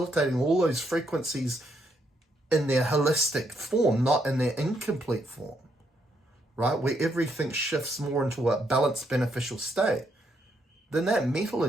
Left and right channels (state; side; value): normal; both; correlation 0.75